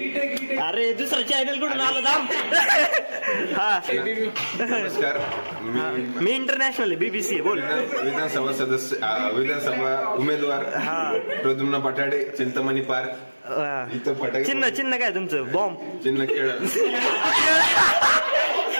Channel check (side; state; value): both; inverted; correlation -1.00